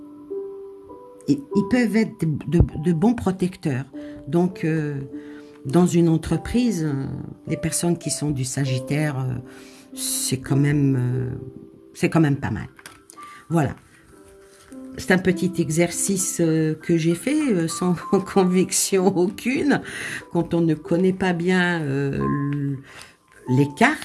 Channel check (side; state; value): both; identical; correlation 1.00